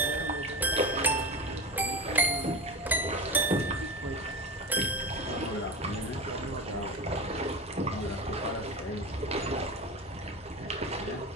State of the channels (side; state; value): both; normal; correlation 0.27